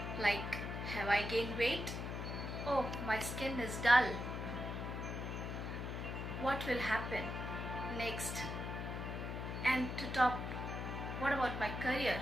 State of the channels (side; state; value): left; noise; hum, 4 dB below the sound